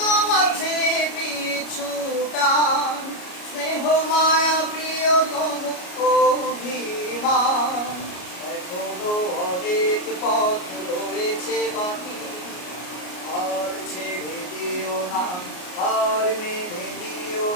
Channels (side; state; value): right; late; 33 ms